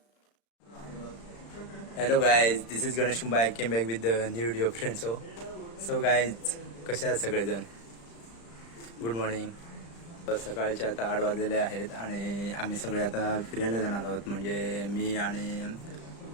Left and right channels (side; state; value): right; late; 35 ms